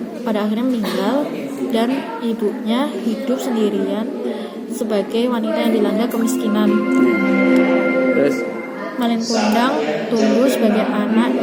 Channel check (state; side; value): identical; both; correlation 1.00